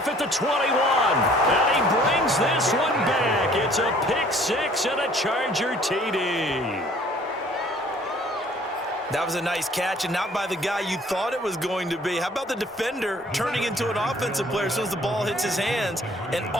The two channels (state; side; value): normal; both; correlation 0.56